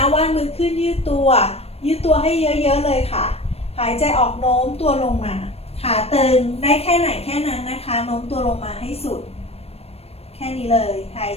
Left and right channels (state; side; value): late; right; 0.29 ms